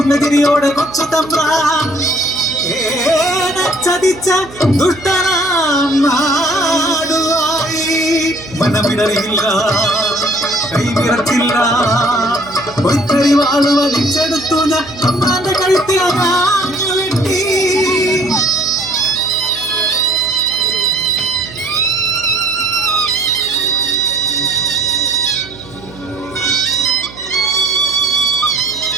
തിരിയോടെ കൊച്ചു തമ്പ്രാൻ ചതിച്ച ദുഷ്ടനാം നാടുവായി മനമിടറിയില്ല കൈവിറച്ചില്ല പൊയ്ക്കറി വാള് വലിച്ചെടുത്തു ഞാൻ തമ്പ്രാന്റെ കഴുത്തിൽ അതാഞ്ഞു വെട്ടി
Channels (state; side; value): noise; right; hum, 19 dB below the sound